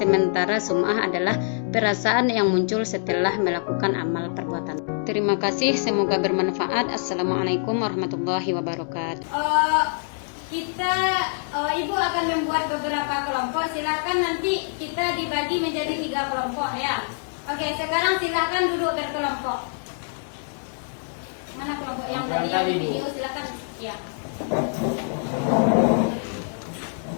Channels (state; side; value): silent; right; digital silence